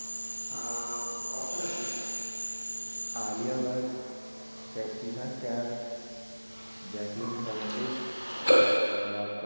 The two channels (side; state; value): both; inverted; correlation -1.00